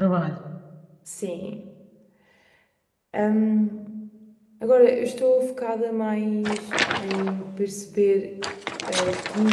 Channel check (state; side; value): identical; both; correlation 1.00